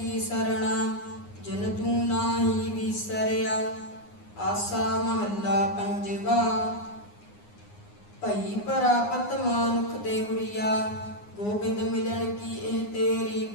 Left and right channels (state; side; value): late; right; 9.7 ms